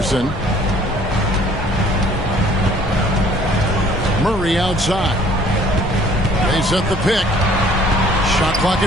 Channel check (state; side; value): normal; both; correlation 0.56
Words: Murray outside. They set the pick. Shot clock